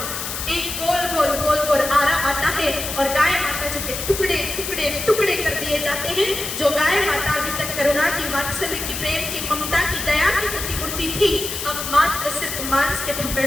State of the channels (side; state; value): left; noise; hiss, 5 dB below the sound